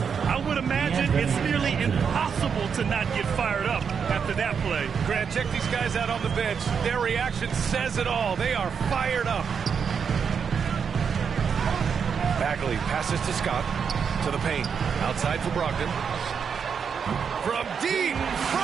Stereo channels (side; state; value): left; quieter; 6.7 dB